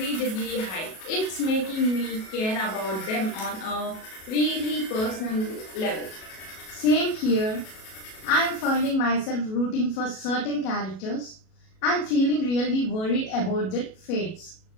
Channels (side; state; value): right; late; 37 ms